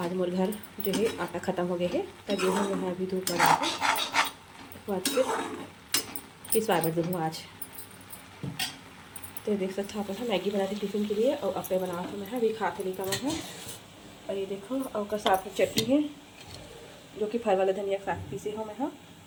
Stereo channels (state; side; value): identical; both; correlation 1.00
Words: मोर घर जो है आटा ख़त्म हो गया है, तब गेहूँ जो है अभी धूप लगा है, बाद फिर पिसवा कर दूँ आज। तो देख सकते हो अपन है, मैगी बना थी टिफिन के लिए और अप्पे बना था मैं अभी खा के नहीं कमा है। और ये देखो और का साथ में चटनी है, जो कि फल वाला धनिया साथ पीसे हो मैं हाँ।